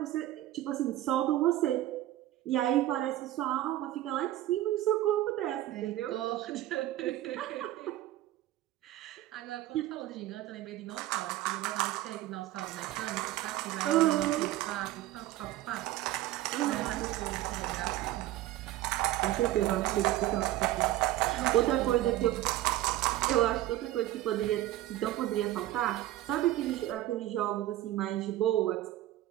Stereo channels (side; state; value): left; quieter; 14.8 dB